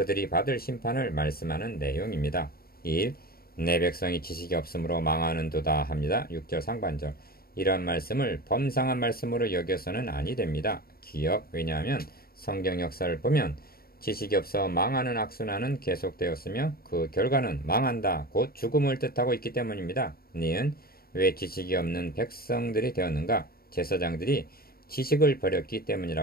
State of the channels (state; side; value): late; right; 0.44 ms